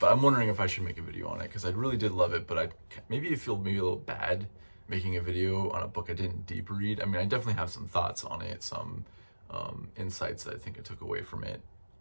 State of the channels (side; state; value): both; inverted; correlation -1.00